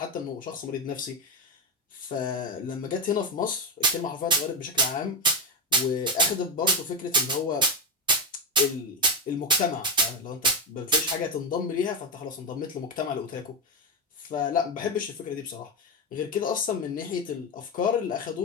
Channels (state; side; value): normal; both; correlation 0.08